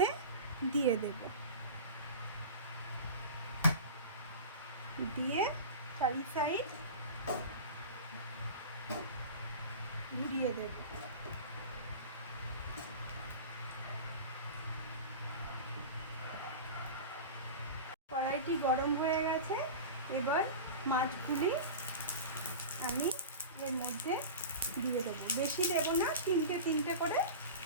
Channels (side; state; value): both; inverted; correlation -0.30